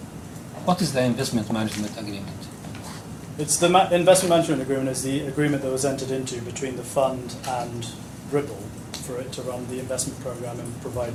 What is the investment management agreement? It's the investment management agreement is the agreement that was entered into between the fund and Ribble for it to run the investment program and provide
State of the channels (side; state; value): both; identical; correlation 1.00